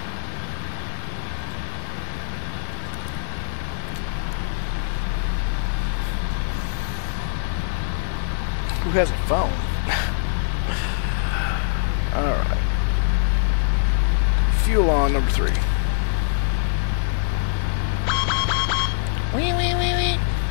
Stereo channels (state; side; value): silent; right; digital silence